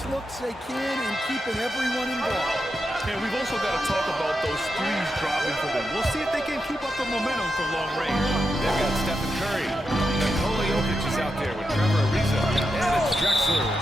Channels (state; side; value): normal; both; correlation 0.86